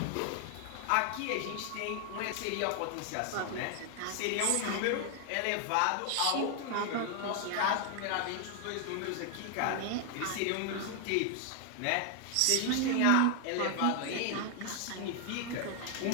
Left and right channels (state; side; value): different; both; correlation 0.00